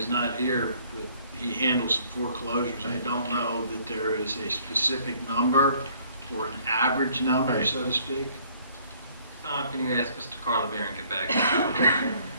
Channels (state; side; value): inverted; both; correlation -0.61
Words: not here, but he handles some foreclosures. I don't know that there is a specific number or an average number, Right. so to speak. Can you ask Mr. Carlemere and get back?